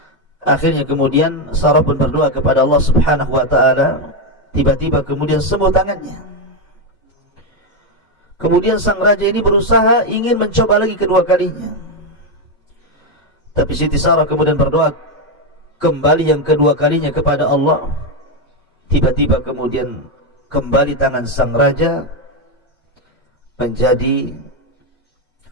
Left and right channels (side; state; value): both; normal; correlation 0.06